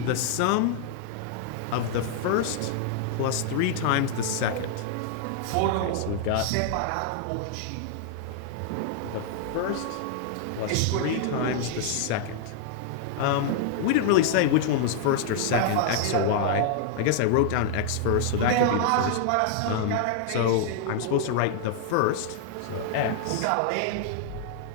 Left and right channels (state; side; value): different; both; correlation 0.00